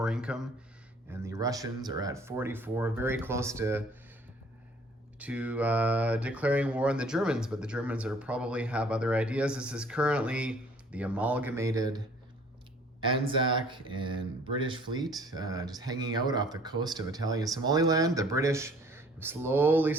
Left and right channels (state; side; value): normal; both; correlation 0.55